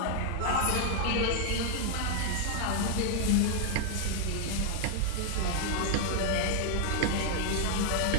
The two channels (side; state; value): both; different; correlation 0.00